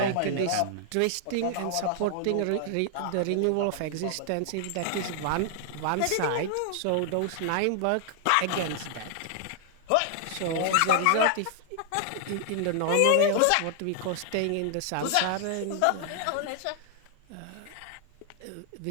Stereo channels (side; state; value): both; different; correlation 0.00